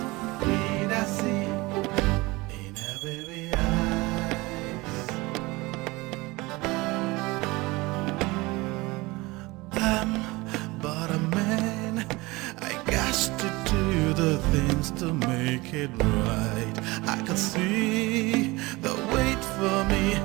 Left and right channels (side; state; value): left; quieter; 22.4 dB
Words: To make it right, I could see the wait for me,